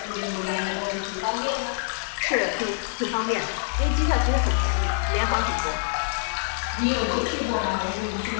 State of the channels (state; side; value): silent; right; 61 dB below the other